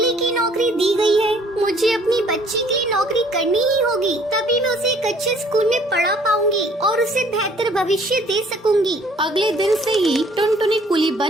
की नौकरी दी गई है। मुझे अपनी बच्ची के लिए नौकरी करनी ही होगी, तभी मैं उसे एक अच्छे स्कूल में पढ़ा पाऊंगी और उसे बेहतर भविष्य दे सकूंगी। अगले दिन से ही टुनटुनी कुली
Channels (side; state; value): both; normal; correlation 0.58